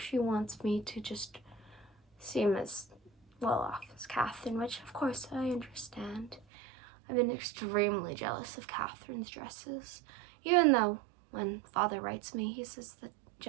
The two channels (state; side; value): drops out; left; at 6.5 s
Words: wants me to just seem as well off as Catherine, which of course I understand. I've been extremely jealous of Catherine's dresses, even though when Father writes me, he says that